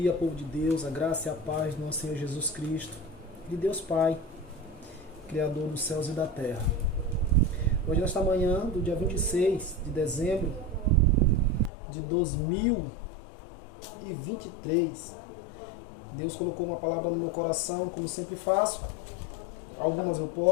povo de Deus, a graça e a paz do nosso Senhor Jesus Cristo, de Deus Pai, Criador dos céus e da terra. Hoje, nesta manhã do dia 26 de dezembro de 2023, Deus colocou uma palavra no meu coração, como sempre faço. Algumas eu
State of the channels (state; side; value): drops out; right; at 11.7 s